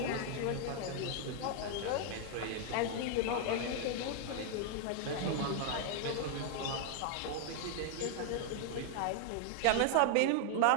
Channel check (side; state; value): both; different; correlation 0.00